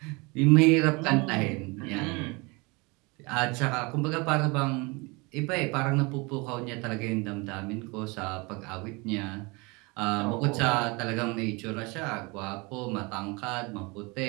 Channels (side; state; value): left; quieter; 26.9 dB